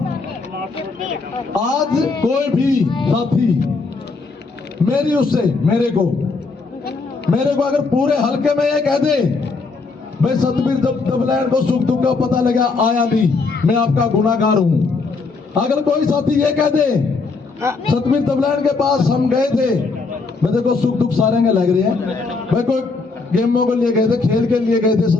आज कोई भी साथी मेरे को अगर पूरे हल्के में ये कह दे भाई सतबीर दबलैंड को सुख दुख का पता लगा आया नहीं, मैं आपका गुनाहगार हूं। अगर कोई साथी ये कह दे सतबीर दबलैंड के पास हम गए थे, मैं देखो सुख दुख सारे के लग रहे हैं, भाई कोई गेमों के लिए गए थे, खेल के लिए गए थे,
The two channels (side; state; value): right; quieter; 4.1 dB